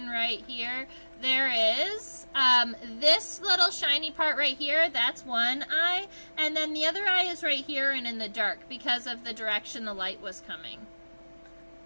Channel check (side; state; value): both; inverted; correlation -1.00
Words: right here, there is this little shiny part right here, that's one eye. And then the other eye is right here and in the dark because of the direction the light was coming.